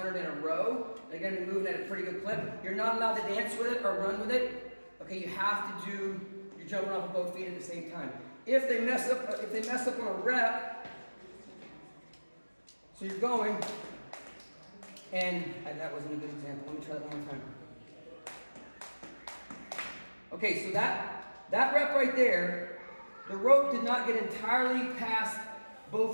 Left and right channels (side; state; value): both; inverted; correlation -1.00